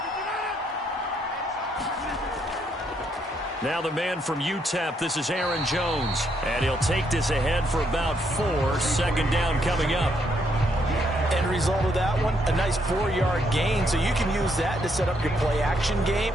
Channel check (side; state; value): both; normal; correlation 0.74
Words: Now the man from UTEP, this is Aaron Jones. And he'll take this ahead for about 4. Second down coming up. End result of that one, a nice 4-yard gain. So you can use that to set up your play-action game.